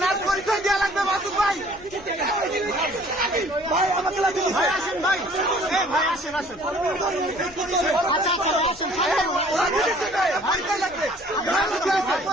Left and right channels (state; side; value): noise; left; rumble, 23 dB below the sound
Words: পরিচয় দেওয়া লাগবে মাসুদ ভাই। ভাই আমাকে ভাই আসেন ভাই, ভাই আসেন আসেন। আচ্ছা আচ্ছা আসেন, পরিচয় লাগবে,